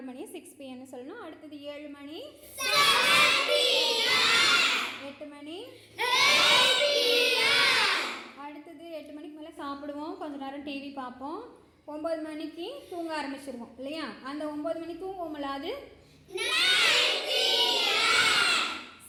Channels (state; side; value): identical; both; correlation 1.00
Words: மணி 6 PM சொல்லணும். அடுத்தது 7 மணி. 8 மணி. அடுத்தது 8 மணிக்கு மேலே சாப்பிடுவோம், கொஞ்ச நேரம் டிவி பார்ப்போம். 9 மணிக்கு தூங்க ஆரம்பிச்சிருவோம் இல்லையா, அந்த 9 மணி தூங்குவோம்ல, அது